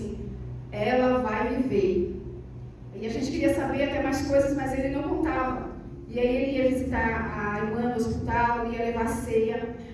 ela vai viver. E a gente queria saber até mais coisas, mas ele não contava. E aí ele ia visitar a irmã no hospital, ia levar ceia.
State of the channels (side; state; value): both; identical; correlation 1.00